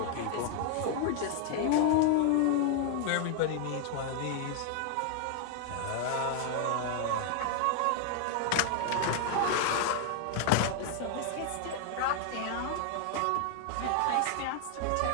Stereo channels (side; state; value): both; different; correlation 0.00